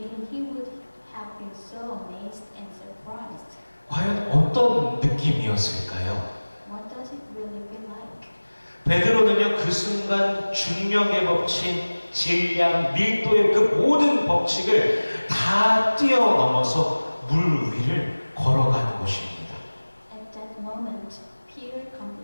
he would have been so amazed and surprised. 과연 어떤 느낌이었을까요? What does it really feel like? 베드로는요, 그 순간 중력의 법칙, 질량, 밀도의 그 모든 법칙을 다 뛰어넘어서 물 위를 걸어가는 것입니다. At that moment, Peter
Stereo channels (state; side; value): inverted; both; correlation -1.00